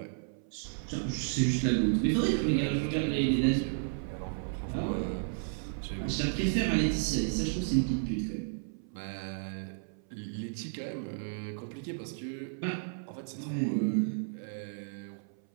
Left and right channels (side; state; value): left; silent; 56 dB below the other